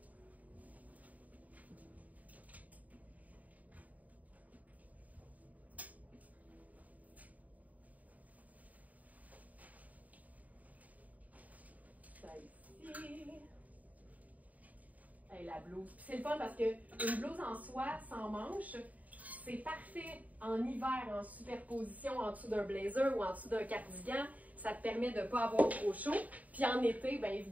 Hey, la blouse. Puis c'est le fun parce qu'une blouse en soie sans manches, c'est parfait en hiver, en superposition en dessous d'un blazer ou en dessous d'un cardigan. Ça te permet de ne pas avoir trop chaud. Puis en été, bien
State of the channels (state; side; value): late; left; 0.073 ms